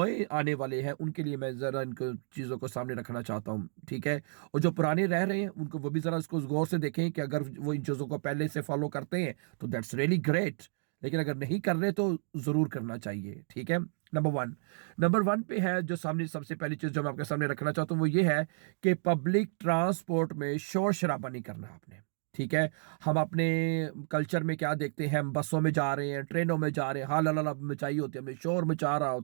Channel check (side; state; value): left; silent; digital silence